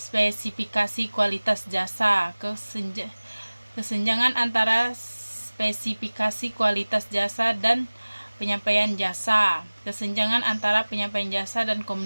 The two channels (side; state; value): both; inverted; correlation -1.00